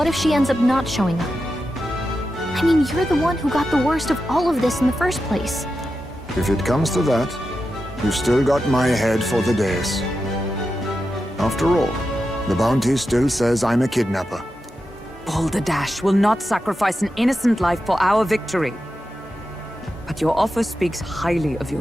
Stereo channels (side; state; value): both; normal; correlation 0.90